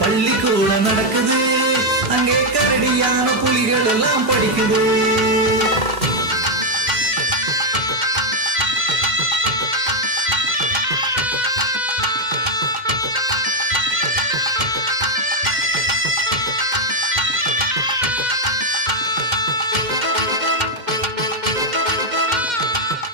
பள்ளிக்கூட நடக்குது, அங்கே கரடியான புலிகள் எல்லாம் படிக்குது.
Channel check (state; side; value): late; left; 2.1 ms